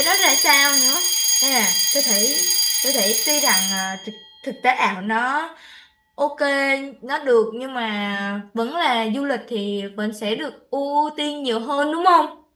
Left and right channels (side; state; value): both; identical; correlation 1.00